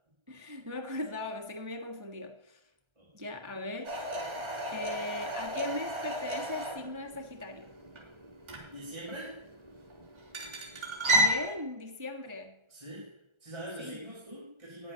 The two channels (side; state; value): left; late; 1.3 ms